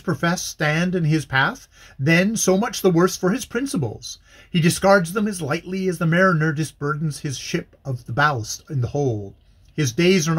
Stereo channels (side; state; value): both; identical; correlation 1.00